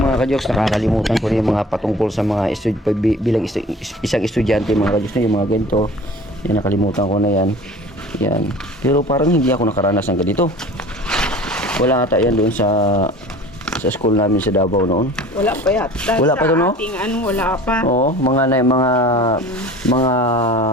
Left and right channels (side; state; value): both; normal; correlation 0.43